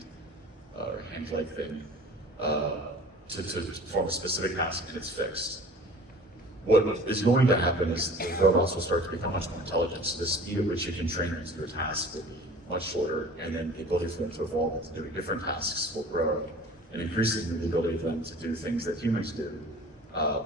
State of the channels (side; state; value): both; normal; correlation 0.44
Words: leg thing to perform a specific task, and it's fixed. What is going to happen is the robots will start to become much more intelligent. So the speed at which you can train them to do a task will be much shorter, and then the ability for them to evolve into doing different tasks will grow, and increasingly the ability for them to do things that humans do